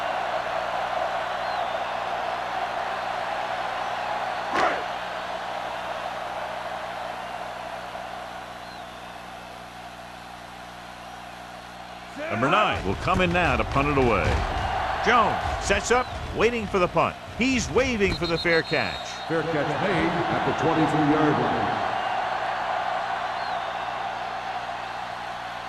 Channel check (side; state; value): both; identical; correlation 1.00